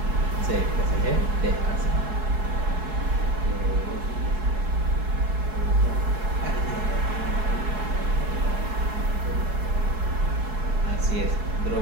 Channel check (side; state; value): left; late; 4.7 ms